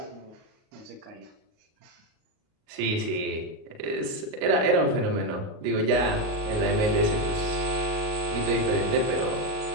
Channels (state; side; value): late; left; 38 ms